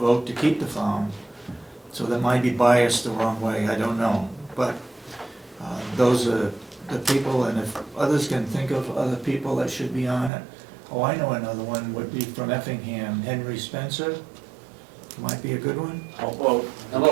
to keep the farm. So that might be biased the wrong way, I don't know. But those are the people, and if others can think of other people that should be on it. Oh, I know another one would be from Effingham, Henry Spencer, might be a good one. How about How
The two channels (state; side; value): drops out; left; at 10.3 s